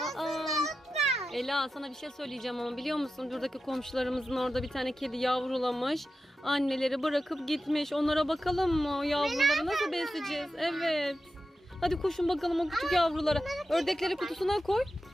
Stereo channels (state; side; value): normal; both; correlation 0.91